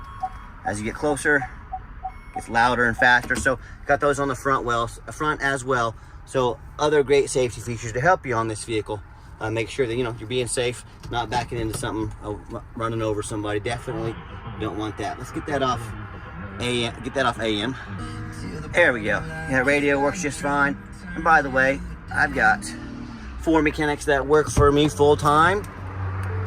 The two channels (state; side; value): identical; both; correlation 1.00